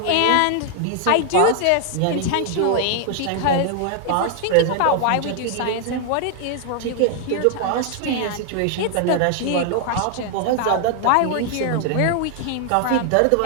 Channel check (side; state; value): both; different; correlation 0.00